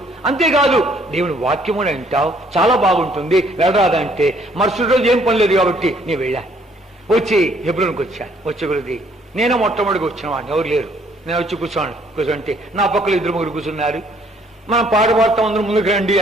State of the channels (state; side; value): normal; both; correlation 0.64